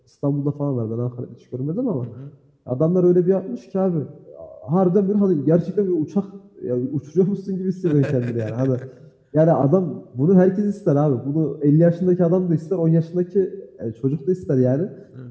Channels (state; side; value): identical; both; correlation 1.00